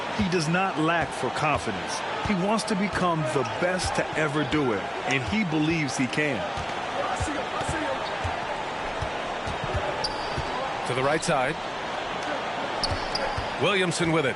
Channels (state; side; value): identical; both; correlation 1.00